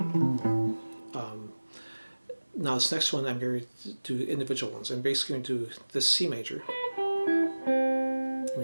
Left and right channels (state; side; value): inverted; both; correlation -1.00